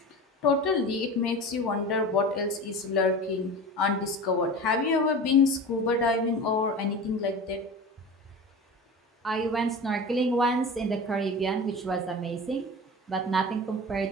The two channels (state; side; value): normal; both; correlation 0.33